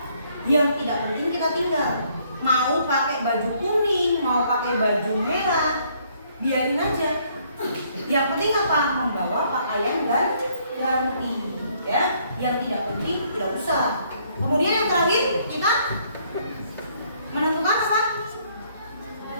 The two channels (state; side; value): inverted; both; correlation -0.66